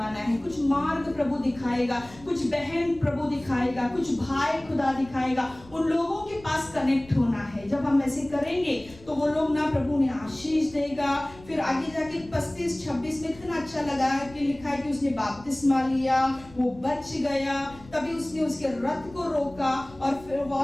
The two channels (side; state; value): left; noise; rumble, 22 dB below the sound